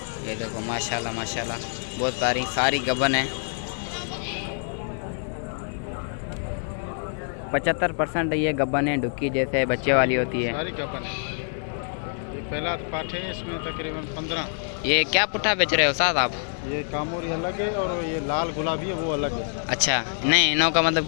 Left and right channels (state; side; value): silent; right; 61 dB below the other